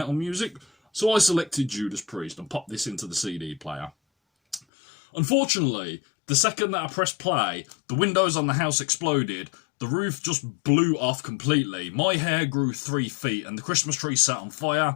music. So I selected Judas Priest and popped this into the CD player. Unfortunately, the second that I pressed play, the windows on the house exploded, the roof just blew off completely, my hair grew 3 feet, and the Christmas tree sat on fire,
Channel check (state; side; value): drops out; right; at 4.6 s